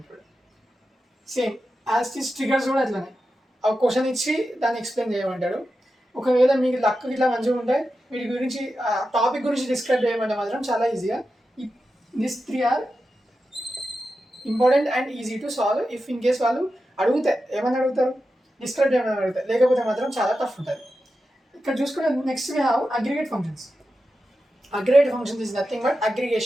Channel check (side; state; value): both; normal; correlation 0.91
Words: సేమ్ యాజ్ ట్రిగర్స్ కూడా అట్లనే ఆ క్వశ్చన్ ఇచ్చి దాన్ని ఎక్స్ప్లెయిన్ చేయమంటాడు. ఒకవేళ మీకు లక్ ఇట్లా మంచిగా ఉంటే వీటి గురించి టాపిక్ గురించి డిస్క్రైబ్ చేయమంటే మాత్రం చాలా ఈజీగా. This 3 are important and easy to solve. If in case వాళ్ళు అడిగితే ఏమని అడుగుతారు, డిస్క్రైబ్ చేయమని అడుగుతారు, లేకపోతే మాత్రం చాలా టఫ్ ఉంటుంది. ఇక్కడ చూసుకునే next we have aggregate functions. Aggregate functions is nothing but